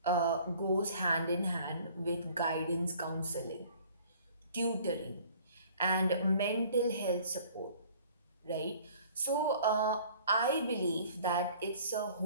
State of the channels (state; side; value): inverted; both; correlation -0.52